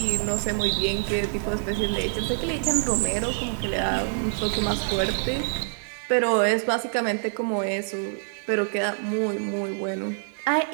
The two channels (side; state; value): left; silent; 59 dB below the other